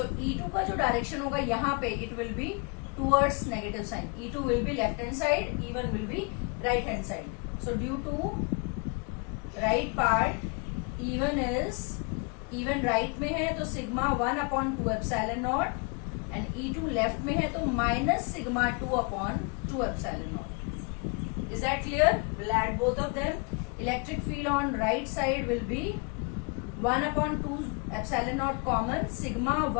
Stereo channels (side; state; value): right; quieter; 33.1 dB